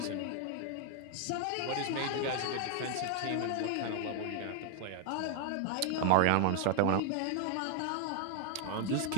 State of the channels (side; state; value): both; different; correlation 0.00